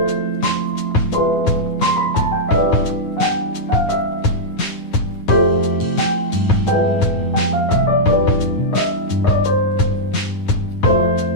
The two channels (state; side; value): late; right; 9.5 ms